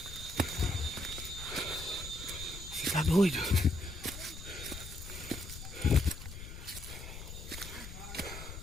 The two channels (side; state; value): left; noise; rumble, 10 dB below the sound